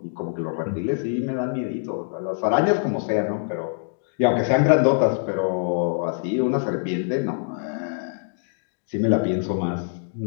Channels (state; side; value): silent; right; digital silence